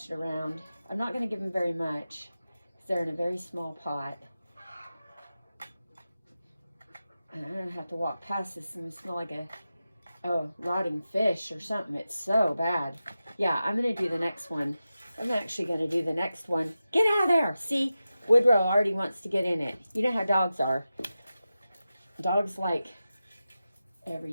it around. I'm not going to give them very much, because they're in a very small pot. And I'm going to have to walk past this and smell like a rotting fish or something. It's so bad. Yeah, I'm going to do the next one. I'm actually going to do the next one. Get out of there. See, Woodrow already wants to get in it. You know how dogs are. Dogs like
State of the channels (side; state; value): both; inverted; correlation -0.93